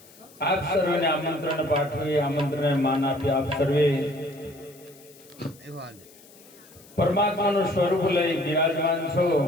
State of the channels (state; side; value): noise; left; hiss, 24 dB below the sound